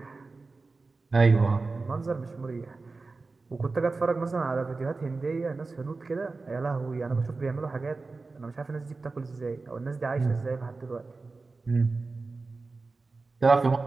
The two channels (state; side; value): quieter; left; 3.8 dB